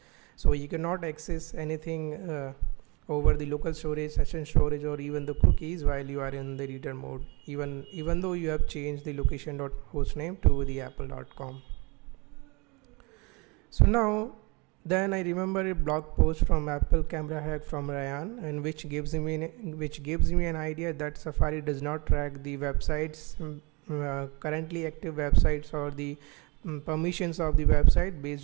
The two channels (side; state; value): left; quieter; 28.2 dB